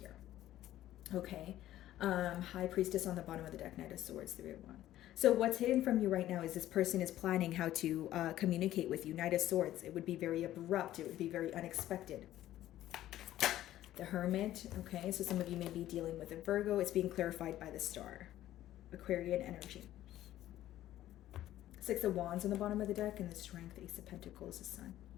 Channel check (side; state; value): right; quieter; 13.6 dB